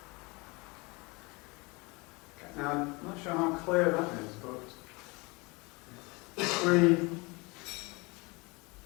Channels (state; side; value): quieter; right; 26.5 dB